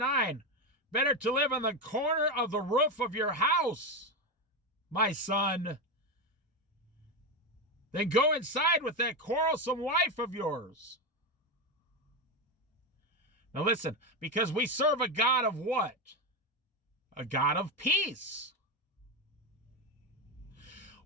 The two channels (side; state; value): both; normal; correlation 0.12